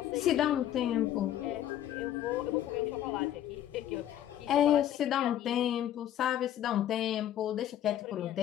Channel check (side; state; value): right; quieter; 11.5 dB